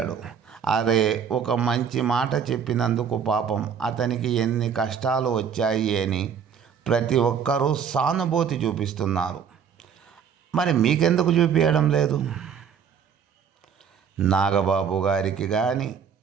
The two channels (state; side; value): quieter; left; 7.4 dB